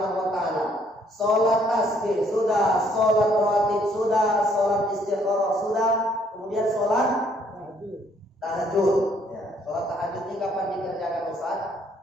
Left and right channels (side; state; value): both; normal; correlation 0.66